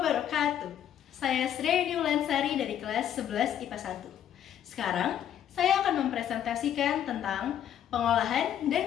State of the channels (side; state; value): right; quieter; 10.2 dB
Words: Saya Sri Lansari dari kelas 11 IPA 1. Sekarang, saya akan mempresentasikan tentang pengolahan